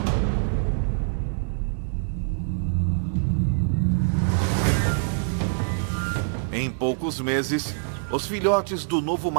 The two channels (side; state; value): left; silent; 62 dB below the other